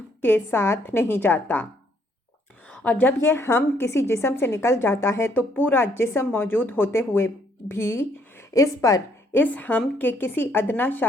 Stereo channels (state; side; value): normal; both; correlation 0.68